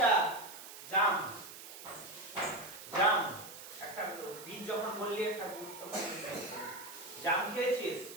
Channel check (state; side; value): noise; right; hiss, 13 dB below the sound